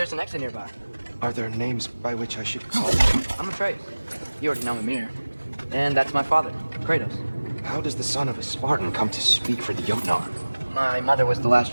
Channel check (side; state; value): both; inverted; correlation -1.00